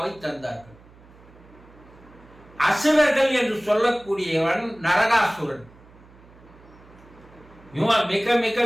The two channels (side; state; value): right; noise; hum, 24 dB below the sound